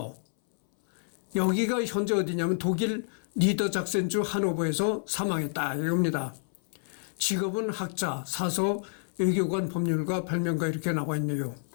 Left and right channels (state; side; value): silent; right; 58 dB below the other